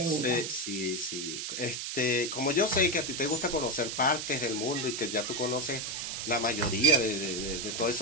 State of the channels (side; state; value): right; noise; hiss, 4 dB below the sound